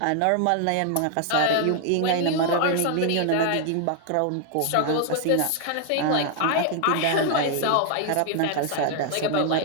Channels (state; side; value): different; both; correlation 0.00